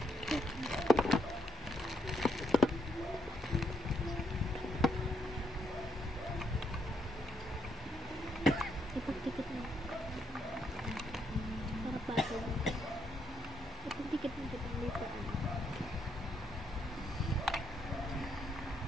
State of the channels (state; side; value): normal; both; correlation 0.75